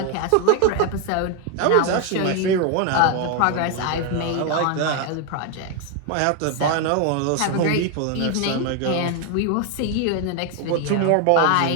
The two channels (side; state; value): both; different; correlation 0.01